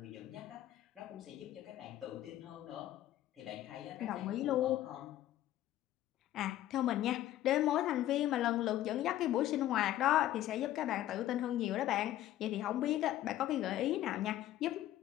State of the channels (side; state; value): right; quieter; 13.5 dB